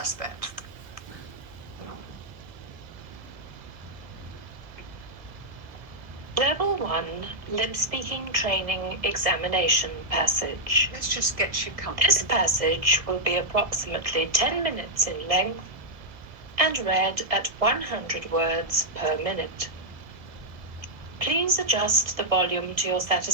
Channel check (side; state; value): left; late; 1.7 ms